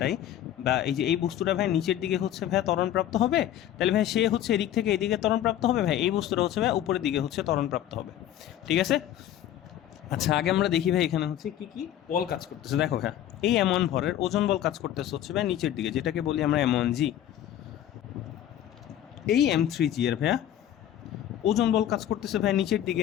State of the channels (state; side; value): quieter; right; 11.6 dB